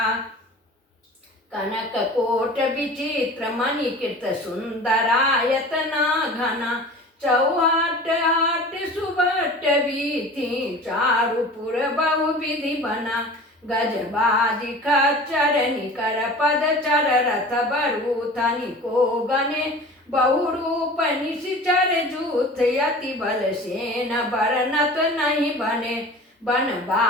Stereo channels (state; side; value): normal; both; correlation 0.39